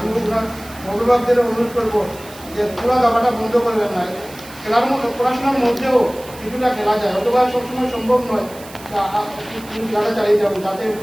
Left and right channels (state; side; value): noise; right; hiss, 19 dB below the sound